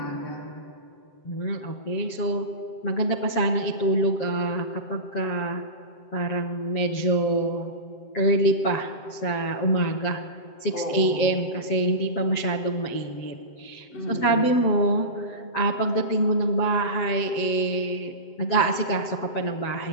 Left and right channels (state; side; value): late; right; 7.7 ms